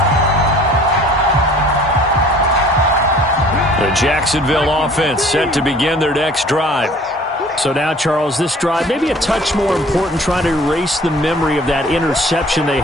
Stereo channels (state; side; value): normal; both; correlation 0.51